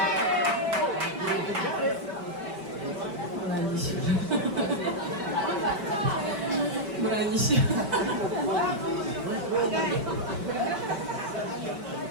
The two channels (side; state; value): left; late; 5.2 ms